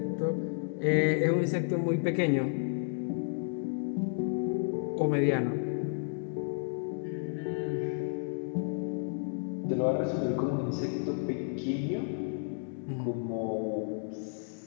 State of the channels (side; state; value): right; silent; digital silence